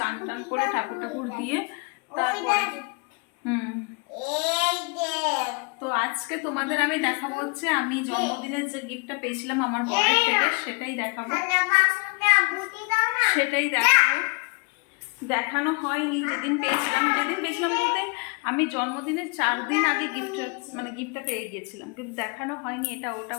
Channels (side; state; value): right; quieter; 33.2 dB